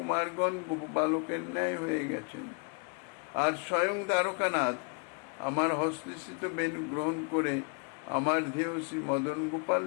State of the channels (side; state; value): right; quieter; 38.8 dB